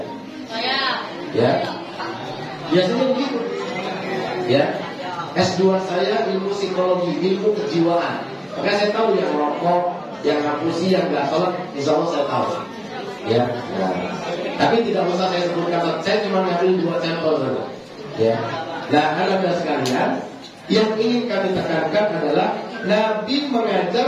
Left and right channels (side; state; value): both; identical; correlation 1.00